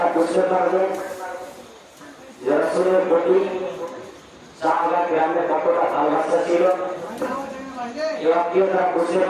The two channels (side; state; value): both; identical; correlation 1.00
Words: বুঝতে পারবেন যে রাসূলের প্রতি সাহাবা গ্রামে কতটা ভালোবাসা ছিল, তারা বুঝতে